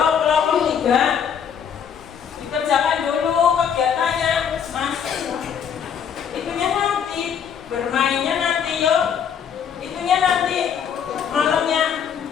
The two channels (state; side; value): quieter; right; 7.8 dB